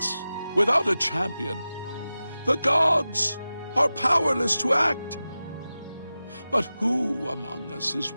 without a champion. The gods are powerless to act. But who among us is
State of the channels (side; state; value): both; inverted; correlation -0.95